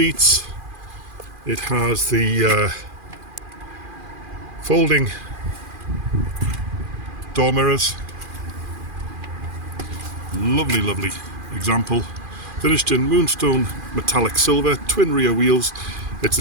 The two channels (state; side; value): late; left; 2.4 ms